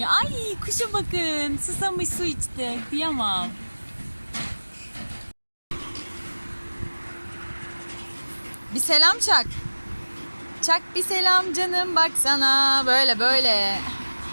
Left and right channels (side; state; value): both; inverted; correlation -1.00